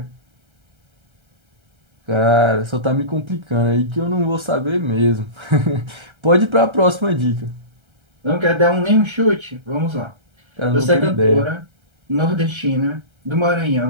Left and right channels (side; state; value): left; late; 1.3 ms